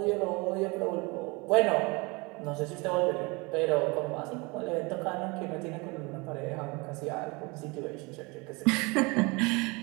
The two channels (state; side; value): quieter; left; 26.8 dB